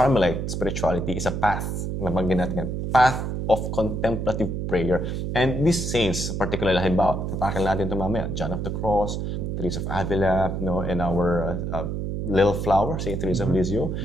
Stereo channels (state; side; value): noise; right; hum, 3 dB below the sound